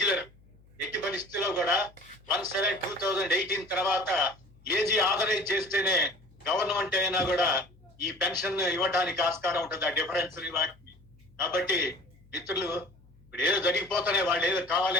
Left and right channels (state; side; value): noise; left; hum, 27 dB below the sound